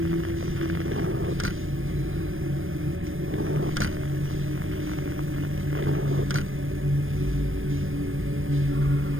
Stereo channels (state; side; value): late; left; 0.59 ms